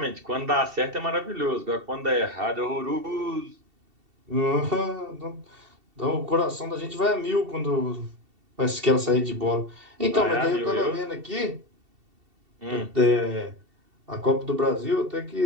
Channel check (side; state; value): left; late; 2.7 ms